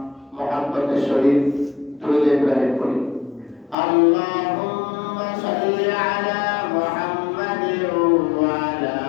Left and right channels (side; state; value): right; drops out; at 3.8 s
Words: محبة الشريف درود إبراهيم قولي: اللهم صل على محمد وعلى